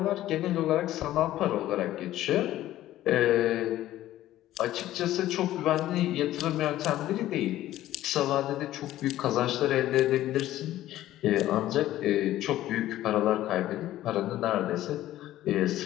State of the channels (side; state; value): right; quieter; 14.2 dB